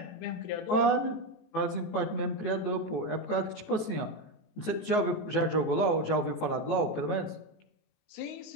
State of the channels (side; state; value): right; late; 18 ms